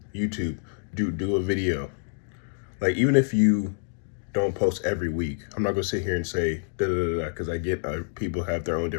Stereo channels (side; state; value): right; silent; digital silence